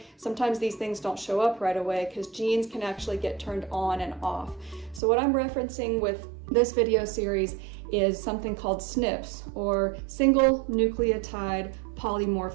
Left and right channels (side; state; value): left; drops out; at 5.0 s